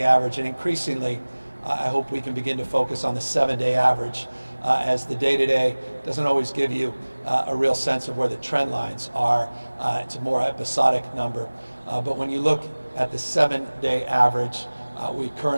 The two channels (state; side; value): inverted; both; correlation -1.00